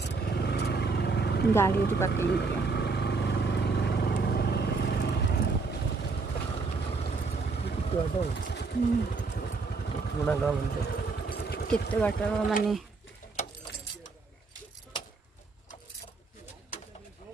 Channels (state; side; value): quieter; left; 4.2 dB